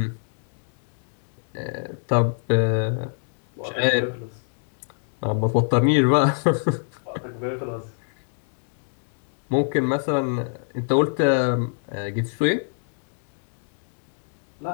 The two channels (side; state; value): right; silent; digital silence